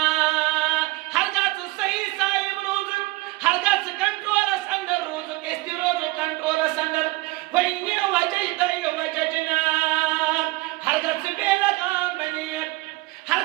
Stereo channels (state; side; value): quieter; left; 21.6 dB